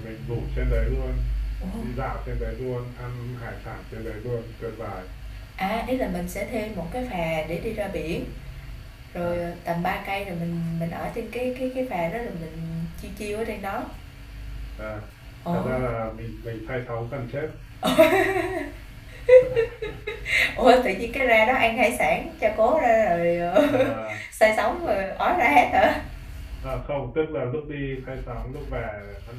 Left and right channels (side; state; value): both; identical; correlation 1.00